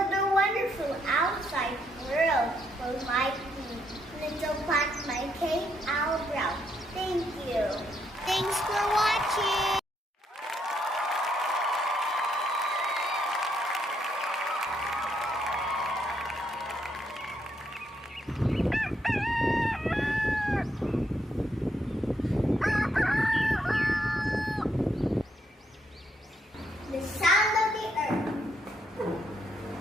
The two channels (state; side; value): normal; both; correlation 0.76